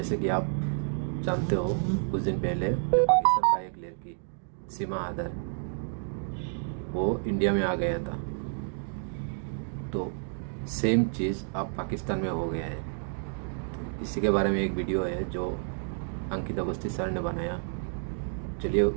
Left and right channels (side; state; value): left; silent; digital silence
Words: कि आप जानते हो, कुछ दिन पहले पाकिस्तान का एक लड़की सीमा आदर वो इंडिया में आ गया था। तो सेम चीज़ अब पाकिस्तान में हो गया है। तो इसी के बारे में एक वीडियो है जो अंकित अवस्थी सर ने बनाया। चलिए